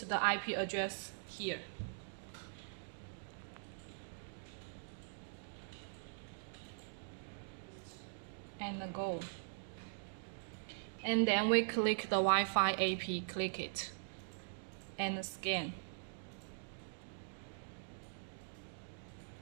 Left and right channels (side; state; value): left; silent; digital silence